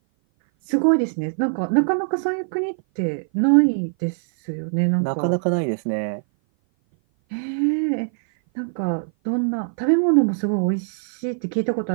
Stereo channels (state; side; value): silent; left; 57 dB below the other